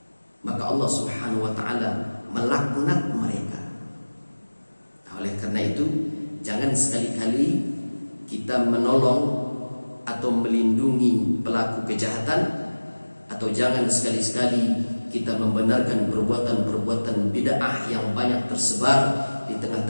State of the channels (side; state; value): both; inverted; correlation -1.00